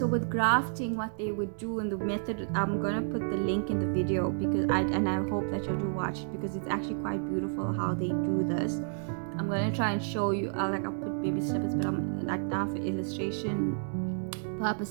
with grafting, what they would do in the method, I'm gonna put the link in the video, because I hope that you'll do watch it, because it's actually quite beautiful how they do this. I'm gonna try and show you. I'll put baby snippets, but I'm like, now for illustration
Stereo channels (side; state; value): left; silent; digital silence